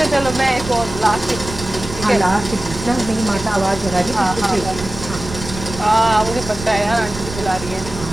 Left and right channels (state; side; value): noise; right; rumble, 11 dB below the sound